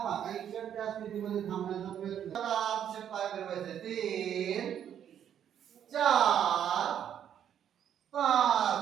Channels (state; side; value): quieter; left; 9.5 dB